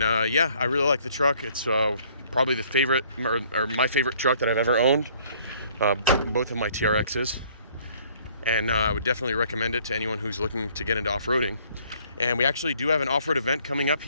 yeah, I really like the truck. It's probably the favorite, or my favorite truck that I've ever owned. Both of my TRXs. And I would definitely recommend it to anyone who's looking to get into off-roading. And we actually do have an off-road event coming up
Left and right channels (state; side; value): inverted; both; correlation -0.60